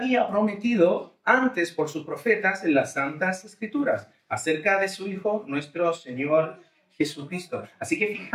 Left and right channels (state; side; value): identical; both; correlation 1.00